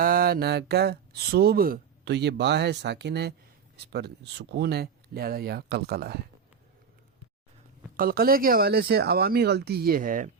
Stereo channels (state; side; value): quieter; left; 6.4 dB